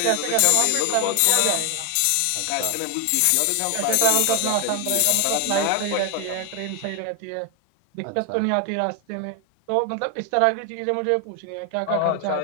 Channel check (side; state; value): both; different; correlation 0.01